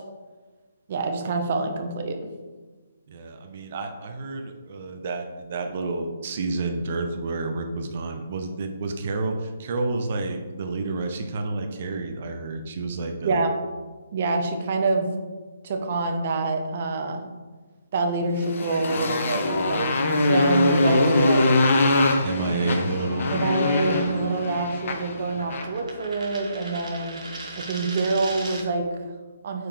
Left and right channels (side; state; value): both; inverted; correlation -0.72